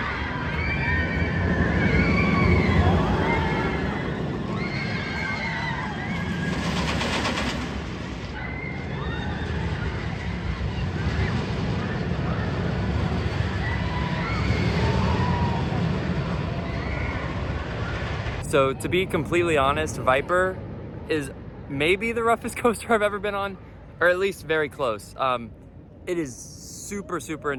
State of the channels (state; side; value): identical; both; correlation 1.00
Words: So to be completely honest, Viper is maybe the roughest coaster I've ever been on, or at least very close. It is super, super